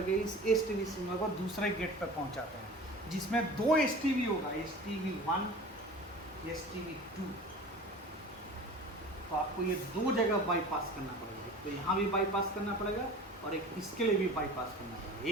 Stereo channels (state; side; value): normal; both; correlation 0.39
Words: इस STB सिग्नल को दूसरे गेट पर पहुंचाते हैं, जिसमें 2 STB होगा, STB1, STB2। तो आपको ये 2 जगह बाईपास करना पड़ेगा। तो यहाँ भी बाईपास करना पड़ेगा और एक इसके लिए भी बाईपास करना पड़ेगा।